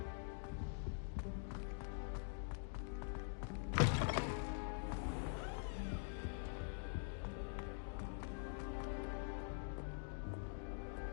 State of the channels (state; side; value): silent; right; digital silence